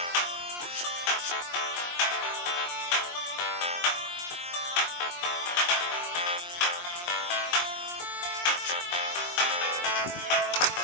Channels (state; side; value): late; right; 23 ms